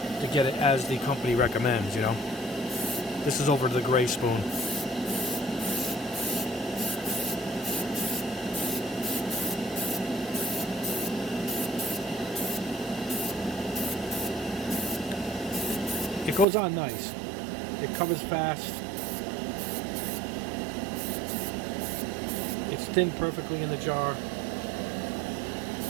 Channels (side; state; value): left; drops out; at 16.4 s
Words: get it as the company recommends, you know. This is over to the gray spoon. It goes on nice. It covers fast. It's thinned perfectly in the jar.